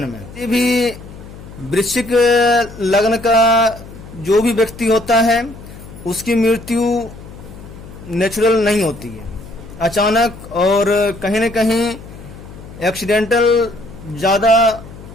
में। ये भी वृश्चिक लग्न का जो भी व्यक्ति होता है उसकी मृत्यु नेचुरल नहीं होती है, अचानक और कहीं न कहीं एक्सीडेंटल ज़्यादा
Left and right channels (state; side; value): noise; left; hum, 16 dB below the sound